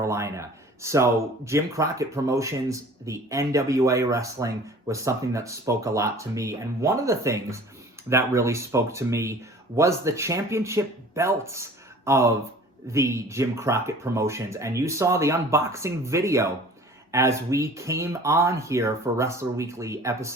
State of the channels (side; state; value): both; normal; correlation 0.46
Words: So Jim Crockett Promotions, the NWA wrestling, was something that spoke a lot to me. And one of the things that really spoke to me was the championship belts of the Jim Crockett Promotions. And you saw the unboxing video as we came on here for Wrestler Weekly